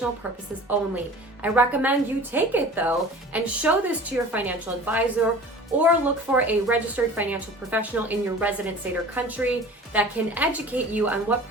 purposes only. I recommend you take it though and show this to your financial advisor, or look for a registered financial professional in your resident state or country that can educate you on what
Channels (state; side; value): normal; both; correlation 0.41